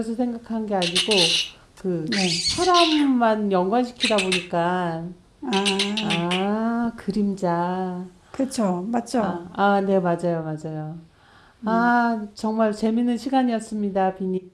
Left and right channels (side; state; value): both; identical; correlation 1.00